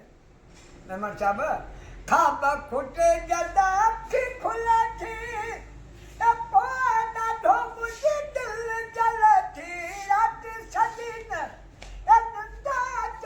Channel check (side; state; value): both; identical; correlation 1.00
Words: मेहमान साहब खाब खुटे जदा थी खुला थी ॾाढो मुझे दिल जल थी रात सजीन